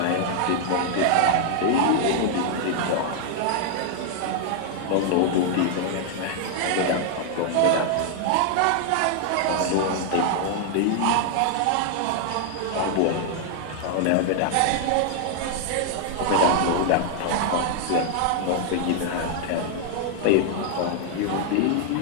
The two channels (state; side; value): different; both; correlation 0.00